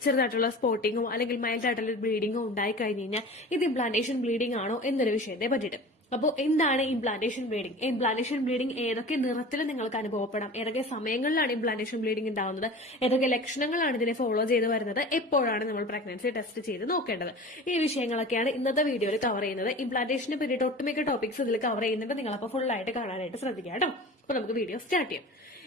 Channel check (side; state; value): both; normal; correlation 0.38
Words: ചെറുതായിട്ടുള്ള സ്പോട്ടിങ്ങോ അല്ലെങ്കിൽ മൈൽഡ് ആയിട്ടുള്ള ബ്ലീഡിങ്ങോ ഉണ്ടായി കഴിഞ്ഞ് കഴിഞ്ഞാൽ ഇത് ഇംപ്ലാന്റേഷൻ ബ്ലീഡിംഗ് ആണോ എന്നൊരു വിഷയത്തെ പറ്റിയിട്ട്. അപ്പോൾ എന്താണ് ഇംപ്ലാന്റേഷൻ ബ്ലീഡിംഗ്? ഇംപ്ലാന്റേഷൻ ബ്ലീഡിംഗ് ഏതൊക്കെ നിറത്തിൽ നിങ്ങൾക്ക് അനുഭവപ്പെടാം, ഏതൊക്കെ സമയങ്ങളിലാണ് ഇംപ്ലാന്റേഷൻ ബ്ലീഡിംഗ് ഉണ്ടാവുന്നത്, ഏതൊക്കെ ലക്ഷണങ്ങളാണ് ഇതിനെ ഫോളോ ചെയ്ത് വരുന്നത്, എപ്പോഴാണ് നമ്മൾ പ്രഗ്നൻസി ടെസ്റ്റ് ചെയ്ത് നോക്കേണ്ടത്, ഈ വിഷയങ്ങളൊക്കെയാണ് ഇന്നത്തെ വീഡിയോയിൽ കവർ ചെയ്യുന്നത്. ഇംപ്ലാന്റേഷനെ പറ്റിയിട്ട് ഒട്ടുമിക്ക ടോപ്പിക്സ് ഇതിൽ കവർ ചെയ്യുന്നുണ്ട്. നിങ്ങളപ്പോൾ ഫുൾ ആയിട്ട് കാണാനായിട്ട് ശ്രദ്ധിക്കുക കേട്ടോ. അപ്പോൾ നമുക്ക് വീഡിയോ സ്റ്റാർട്ട് ചെയ്യാം.